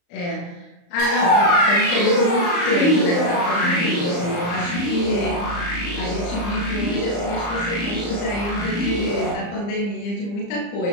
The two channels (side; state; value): right; late; 34 ms